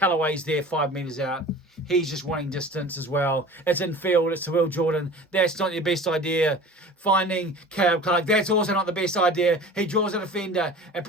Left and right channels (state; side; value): normal; both; correlation 0.40